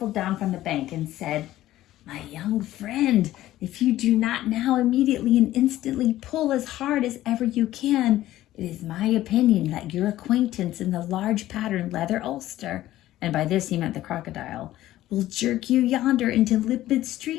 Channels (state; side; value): quieter; right; 14.6 dB